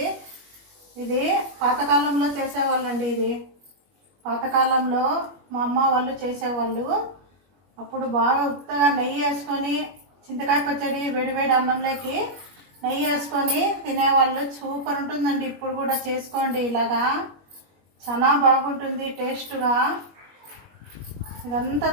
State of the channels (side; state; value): left; late; 21 ms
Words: ఇది పాతకాలంలో చేసేవాళ్ళండి. ఇది పాతకాలంలో మా అమ్మ వాళ్ళు చేసేవాళ్ళు. అప్పుడు బాగా ఉత్తగా నెయ్యి వేసుకొని చింతకాయ పచ్చడి వేడివేడి అన్నంలోకి నెయ్యి వేసుకొని తినేవాళ్ళు. సూపర్ ఉంటుందండి. ఇప్పుడు కూడా చేసుకోండి, ఇలాగా చాలా బాగుంటుంది టేస్ట్గా. ఇదంతా